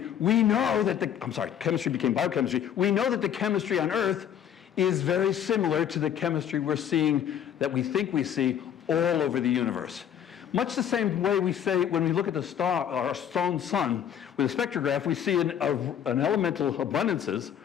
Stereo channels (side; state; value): right; quieter; 9.4 dB